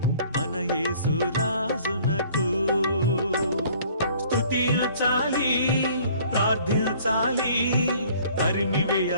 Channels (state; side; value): inverted; both; correlation -0.54